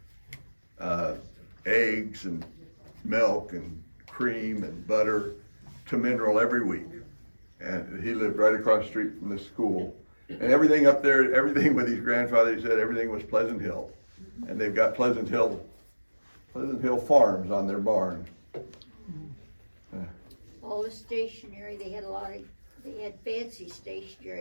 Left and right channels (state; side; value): inverted; both; correlation -1.00